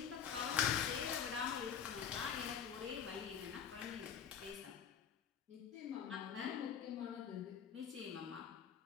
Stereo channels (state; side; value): quieter; right; 7.9 dB